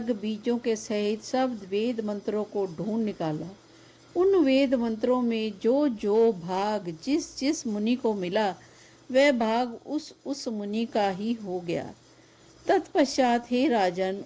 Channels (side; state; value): both; identical; correlation 1.00